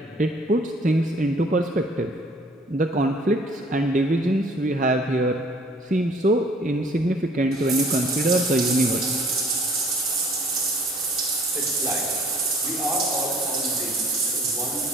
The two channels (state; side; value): normal; both; correlation 0.56